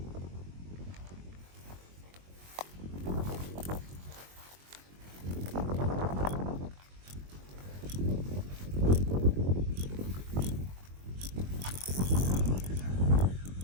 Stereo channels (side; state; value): left; late; 22 ms